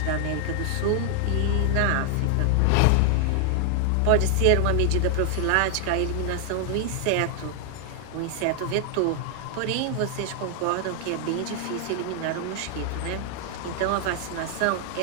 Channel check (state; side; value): different; both; correlation 0.00